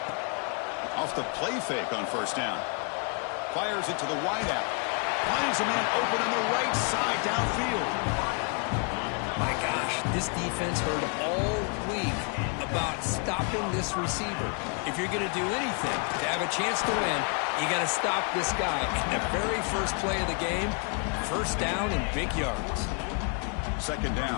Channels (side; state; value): right; quieter; 39.3 dB